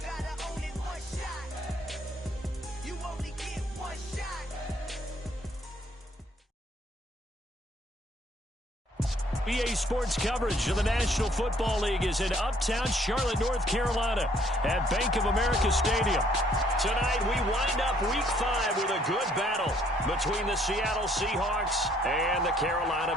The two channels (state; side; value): normal; both; correlation 0.64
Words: gotta own it. One shot. You only get one shot. EA Sports coverage of the National Football League is in uptown Charlotte, North Carolina at Bank of America Stadium. Tonight, we wind up Week 5 with a good battle between the Seattle Seahawks and the Carolina